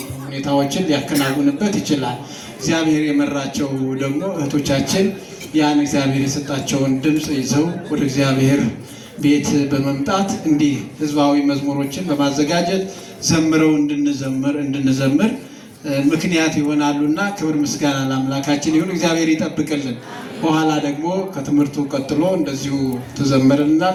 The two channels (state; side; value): identical; both; correlation 1.00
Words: ሁኔታዎችን ሊያከናውንበት ይችላል። እግዚአብሔር የመራቸው ደግሞ እህቶቻችን ያን እግዚአብሔር የሰጣቸውን ድምፅ ይዘው ወደ እግዚአብሔር ቤት በመምጣት እንዲህ ህዝባዊ መዝሙሮችን በማዘጋጀት ዘምረው እንድንዘምር ምክንያት ይሆናሉና ክብር ምስጋና ለአምላካችን ይሁን። እግዚአብሔር ይጠብቅልን። በኋላ ደግሞ ከትምህርቱ ቀጥሎ እንደዚሁ